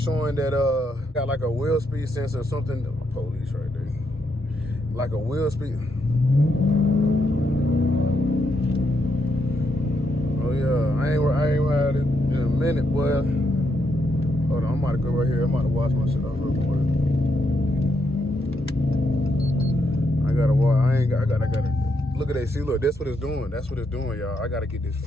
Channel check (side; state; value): both; normal; correlation 0.79